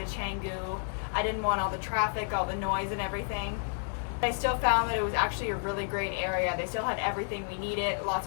Canggu. I didn't want all the traffic, all the noise and everything. I still found that it was actually a really great area. They still had everything we needed, lots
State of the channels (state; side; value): silent; right; digital silence